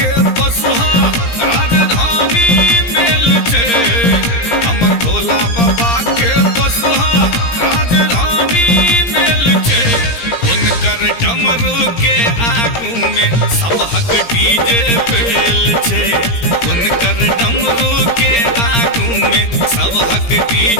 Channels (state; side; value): late; right; 17 ms